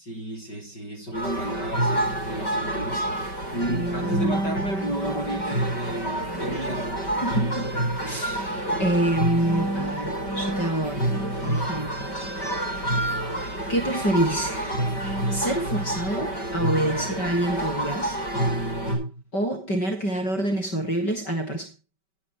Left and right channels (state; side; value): late; right; 5.2 ms